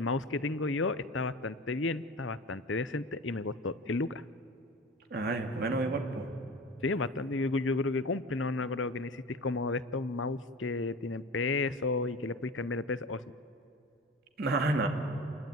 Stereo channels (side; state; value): both; normal; correlation 0.34